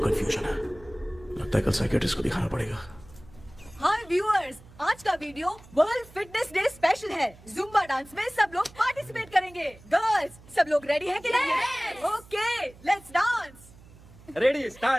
कल साइकियाट्रिस्ट को दिखाना पड़ेगा। हाय व्यूअर्स, आज का video world fitness day special है। जुम्बा डांस में सब लोग पार्टिसिपेट करेंगे। गर्ल्स, सब लोग रेडी हैं कि नहीं? Okay, let's dance. Ready,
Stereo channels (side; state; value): right; noise; hum, 22 dB below the sound